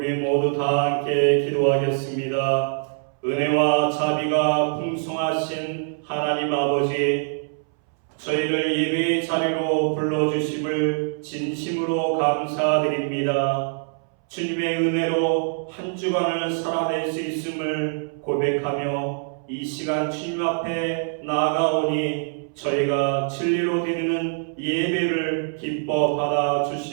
모두 다 함께 기도하겠습니다. 은혜와 자비가 풍성하신 하나님 아버지, 저희를 예배의 자리로 불러주심을 진심으로 감사드립니다. 주님의 은혜로 한 주간을 살아낼 수 있음을 고백하며 이 시간 주님 앞에 나아가오니 저희가 진리로 드리는 예배를 기뻐 받아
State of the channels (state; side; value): silent; left; 63 dB below the other